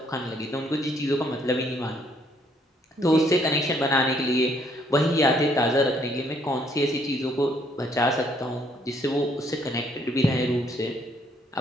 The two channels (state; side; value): normal; both; correlation 0.67